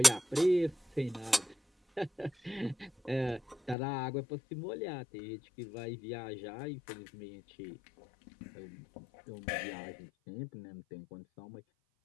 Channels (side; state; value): right; drops out; at 3.8 s